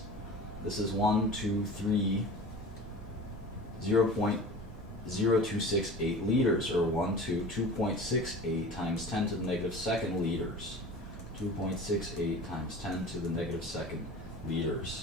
This is 0.0268 liters, or 2.68 times 10 to the negative second liters. 2.68 times 10 to the negative second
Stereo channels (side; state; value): both; normal; correlation 0.38